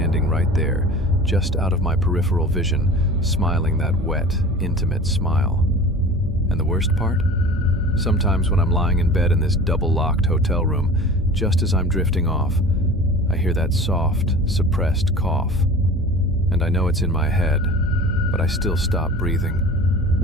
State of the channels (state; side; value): normal; both; correlation 0.39